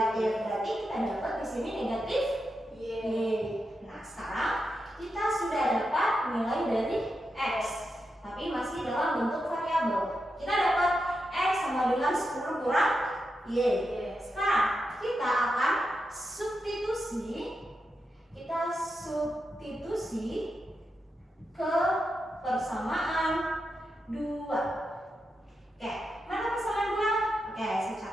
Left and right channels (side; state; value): both; normal; correlation 0.87